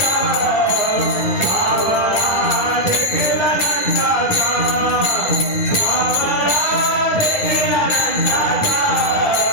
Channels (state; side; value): late; right; 9.6 ms